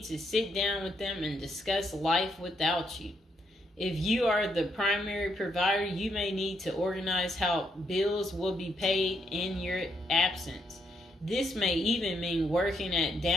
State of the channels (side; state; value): both; normal; correlation 0.76